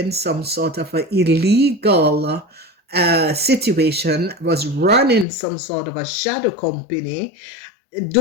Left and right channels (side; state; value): right; drops out; at 5.2 s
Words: some sort of an illegal situation, was running some sort of a shadow company,